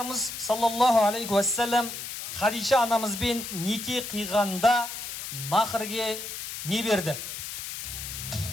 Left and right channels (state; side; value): noise; left; hiss, 7 dB below the sound